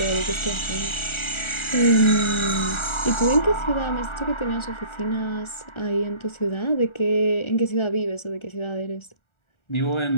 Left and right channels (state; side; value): late; right; 1.4 ms